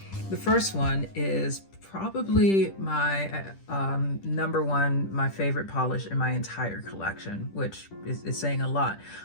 The first one is probably my number one, my favorite polish in my entire collection, which is saying a lot.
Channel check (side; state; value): right; late; 10 ms